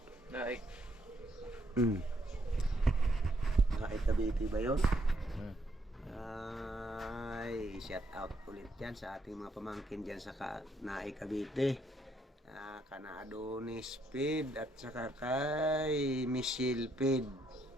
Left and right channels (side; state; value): both; normal; correlation 0.73